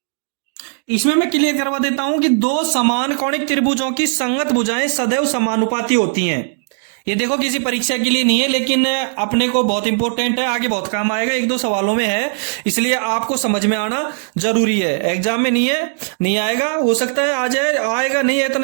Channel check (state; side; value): silent; left; digital silence